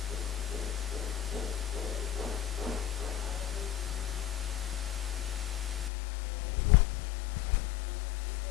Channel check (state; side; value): drops out; right; at 5.9 s